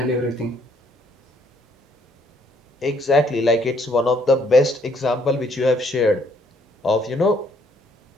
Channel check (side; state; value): both; normal; correlation 0.67